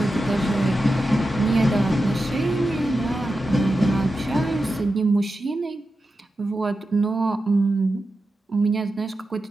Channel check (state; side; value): normal; both; correlation 0.91